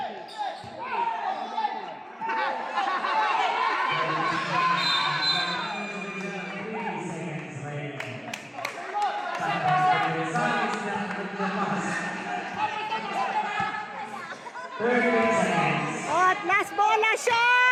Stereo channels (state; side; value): identical; both; correlation 1.00